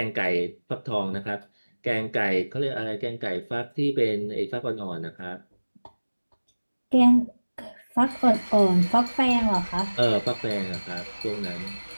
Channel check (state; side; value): inverted; both; correlation -1.00